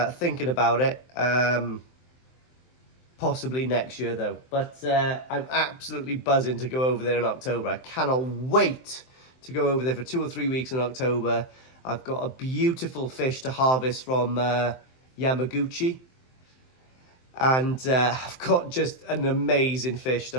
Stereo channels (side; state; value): right; late; 23 ms